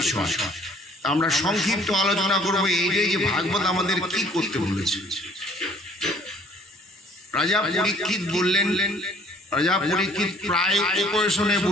আমরা সংক্ষিপ্ত আলোচনা করবো এইটাই যে ভাগবত আমাদের কি করতে বলেছে। রাজা পরীক্ষিত বললেন, রাজা পরীক্ষিত প্রায় উপবেশনে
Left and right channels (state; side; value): normal; both; correlation 0.56